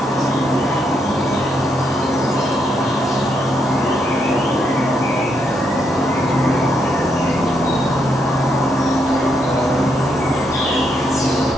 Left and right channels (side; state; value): both; normal; correlation 0.78